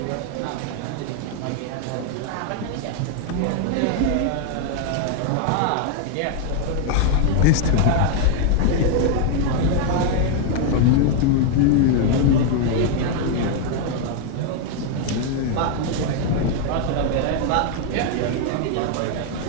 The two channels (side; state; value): both; different; correlation 0.00